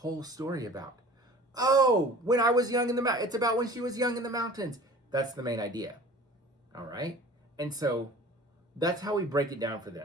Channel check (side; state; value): both; normal; correlation 0.44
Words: story about? Oh, when I was young in the mountains. It's about when she was young in the mountains. That's the main idea. All right? And so that's how we break it down for